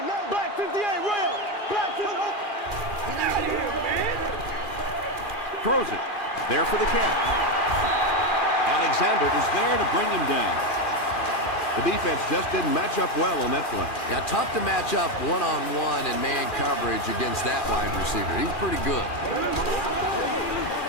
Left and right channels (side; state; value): right; late; 2.4 ms